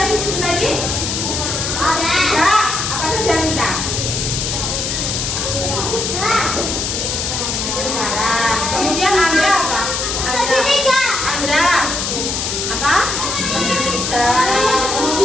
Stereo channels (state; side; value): noise; left; hiss, 2 dB below the sound